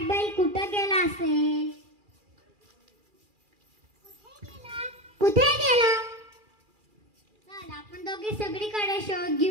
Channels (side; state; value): left; late; 2.4 ms